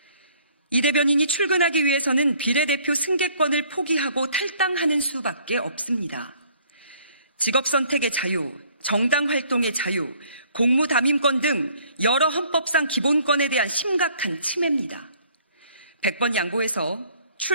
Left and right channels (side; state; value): both; inverted; correlation -0.59